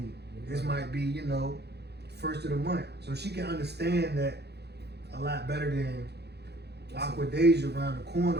This might be, you know, first of the month. So she can understand that a lot better than Aqua Deja around the corner.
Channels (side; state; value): left; late; 0.48 ms